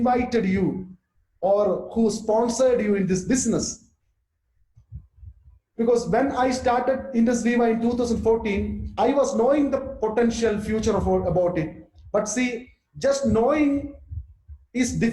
you or who sponsored you in this business. Because when I started Indus Viva in 2014, I was knowing the potential future about it. But see, just knowing is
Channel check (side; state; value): both; identical; correlation 1.00